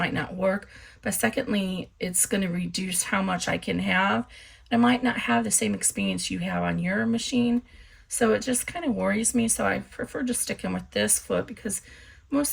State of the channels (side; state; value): both; identical; correlation 1.00